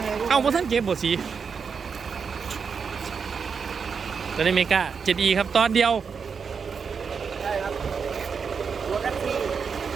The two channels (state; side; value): quieter; left; 5.9 dB